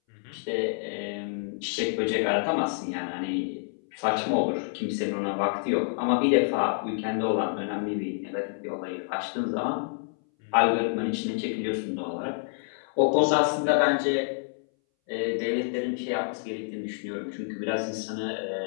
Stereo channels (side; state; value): right; silent; 59 dB below the other